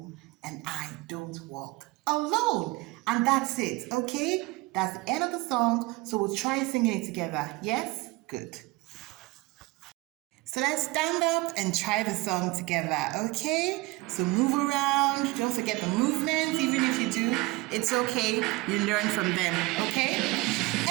and I don't walk alone. And that's it, okay? That's the end of the song, so we'll try singing it together. Yes? Good. So let's stand up and try the song together, okay? So move around, don't forget the movements, even if you do, it's okay, you learn from them, okay?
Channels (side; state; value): left; quieter; 21.9 dB